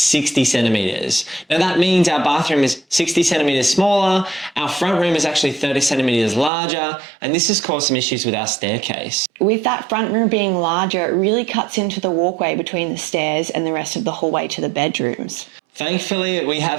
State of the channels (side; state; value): left; drops out; at 6.5 s